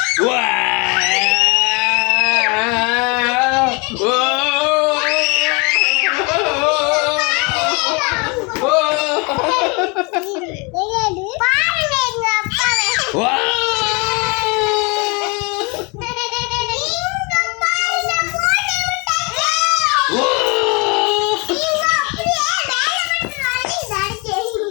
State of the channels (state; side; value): quieter; right; 30.2 dB